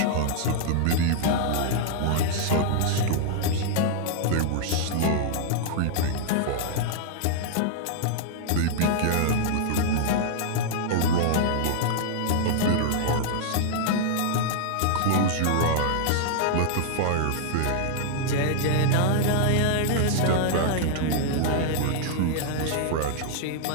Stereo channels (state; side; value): different; both; correlation -0.01